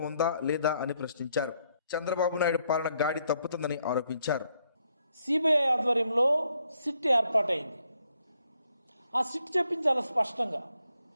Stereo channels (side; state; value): both; inverted; correlation -0.74